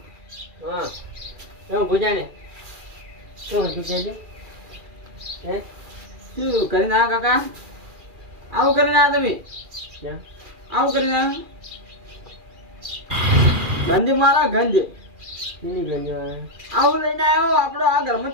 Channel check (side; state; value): left; late; 2.4 ms